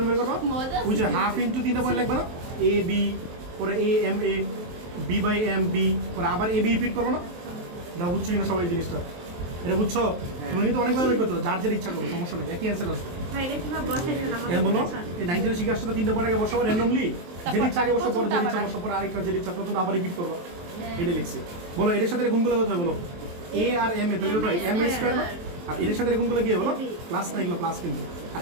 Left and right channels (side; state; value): left; late; 23 ms